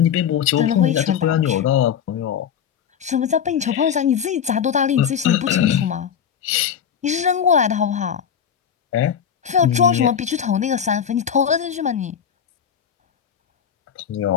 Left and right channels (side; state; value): right; quieter; 8.3 dB